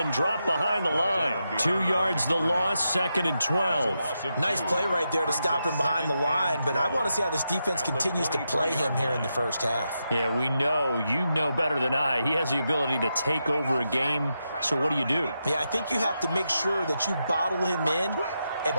dropped behind the line. 2 yards the loss, 2nd and 12. Nice play right there to stop him behind the line, but I want to see how this defense continues to play him here in the first half. Yeah, we know, you know better than I, he has the ability to take over a game, so what do? Yeah, I think you have to make sure that you bottle him in at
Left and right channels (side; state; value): both; inverted; correlation -0.86